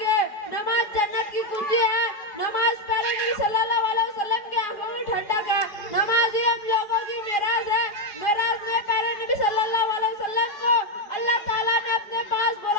नमाज जन्नत की कुंजी है। नमाज प्यारे नबी सल्लल्लाहु अलैहि वसल्लम की आंखों में ठंडक है। नमाज ही हम लोगों की मेराज है। मेराज ने प्यारे नबी सल्लल्लाहु अलैहि वसल्लम को अल्लाह ताला ने अपने पास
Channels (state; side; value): late; right; 4.8 ms